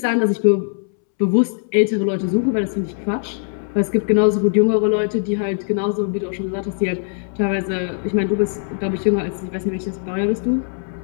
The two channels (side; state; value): right; silent; 66 dB below the other